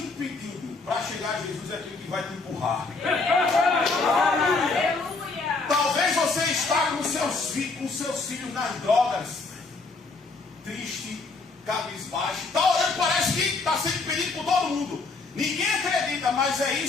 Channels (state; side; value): quieter; right; 3.9 dB